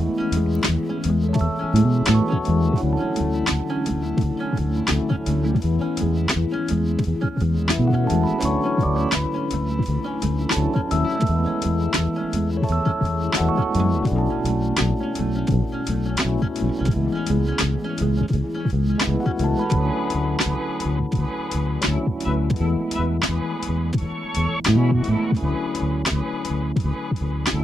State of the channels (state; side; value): normal; both; correlation 0.87